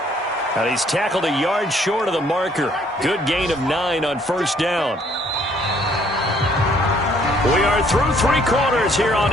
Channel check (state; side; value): normal; both; correlation 0.63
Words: And he's tackled a yard short of the marker. Good gain of 9 on first down. We are through 3 quarters here on